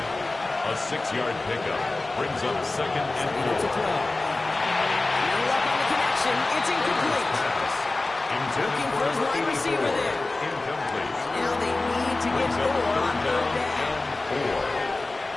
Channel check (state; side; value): quieter; right; 3.1 dB